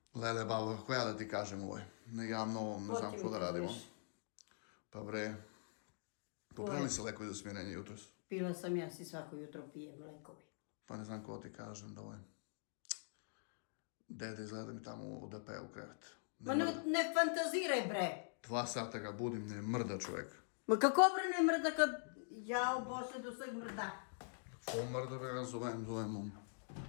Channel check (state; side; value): silent; right; digital silence